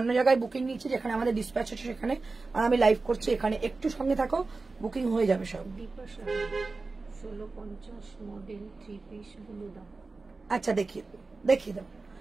জায়গায় বুকিং নিচ্ছে, যেখানে আমাদের ডিসপ্যাচ হচ্ছে সেখানে, আর আমি লাইভ করছি এখানে। একটু সঙ্গে থাকো, বুকিং হয়ে যাবে সব। দীপা 1650 মডেল 3 পিস গুলো দাও। আচ্ছা দেখিয়ে দেবো,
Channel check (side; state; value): left; quieter; 3.8 dB